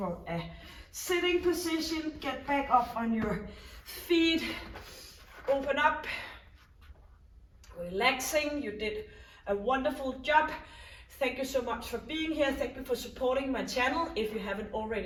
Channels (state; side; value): identical; both; correlation 1.00